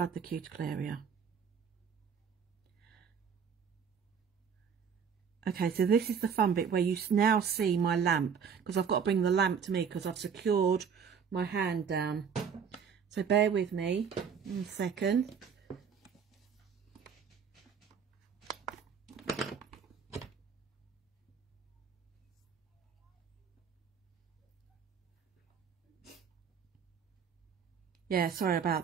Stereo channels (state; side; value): quieter; left; 6.9 dB